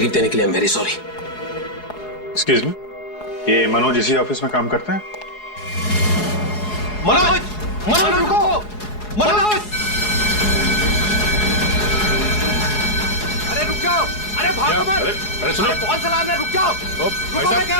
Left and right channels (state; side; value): late; right; 4.8 ms